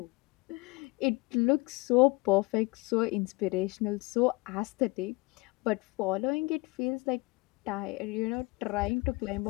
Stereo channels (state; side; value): quieter; right; 24.7 dB